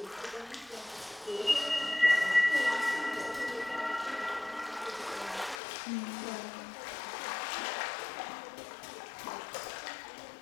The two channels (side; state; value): right; drops out; at 5.6 s